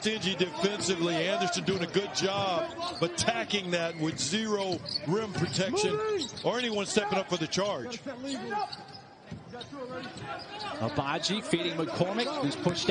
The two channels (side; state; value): both; identical; correlation 1.00